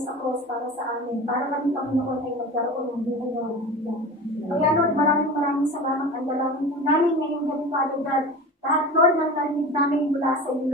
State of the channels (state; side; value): normal; both; correlation 0.33